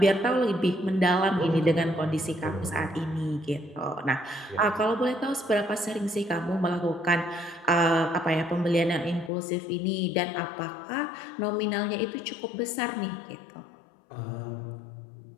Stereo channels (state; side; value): drops out; right; at 9.3 s